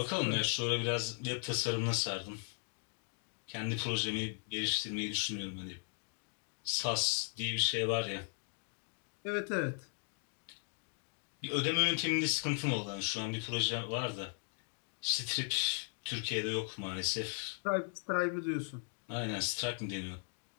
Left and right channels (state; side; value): silent; right; 53 dB below the other